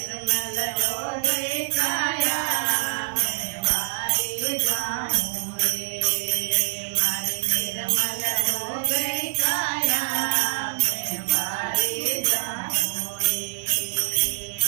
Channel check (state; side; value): silent; left; digital silence